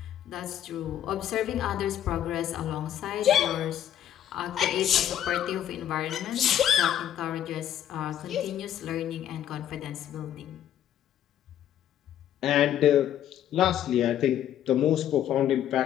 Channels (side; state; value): right; quieter; 10.9 dB